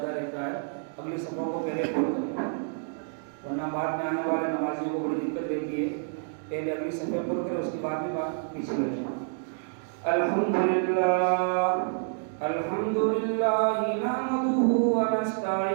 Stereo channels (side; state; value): left; silent; digital silence